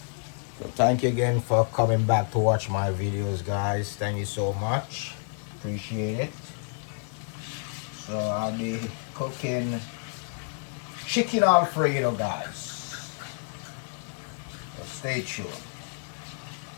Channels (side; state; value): right; silent; 59 dB below the other